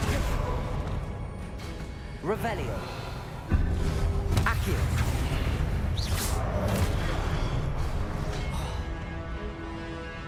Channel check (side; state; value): both; identical; correlation 1.00